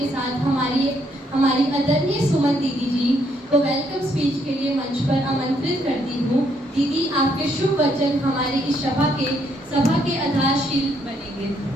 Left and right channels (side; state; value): both; normal; correlation 0.72